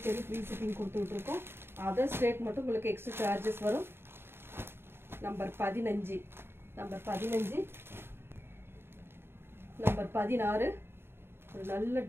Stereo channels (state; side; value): late; left; 0.11 ms